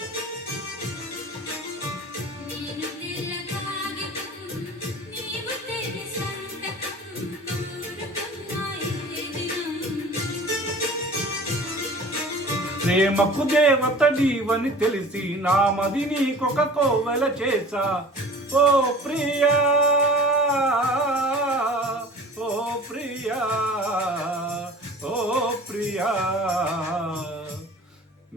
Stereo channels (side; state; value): both; normal; correlation 0.43